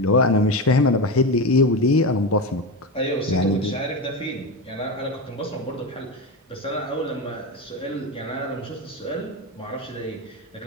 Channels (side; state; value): both; normal; correlation 0.18